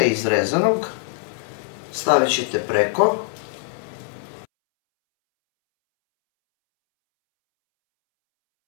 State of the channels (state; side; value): silent; right; 64 dB below the other